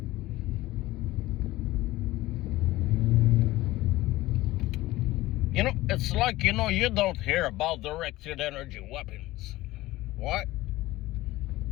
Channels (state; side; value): quieter; right; 17.8 dB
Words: You know, it's like, you know, you don't hear about directed energy weapons. What?